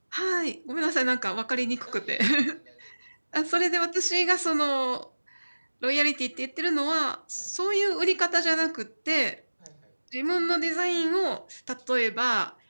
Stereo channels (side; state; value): both; inverted; correlation -1.00